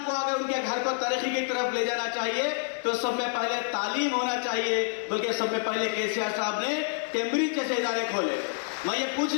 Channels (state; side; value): silent; right; 59 dB below the other